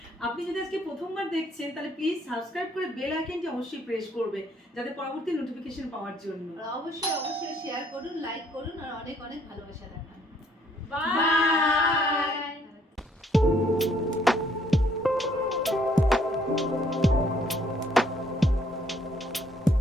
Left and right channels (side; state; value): both; normal; correlation 0.66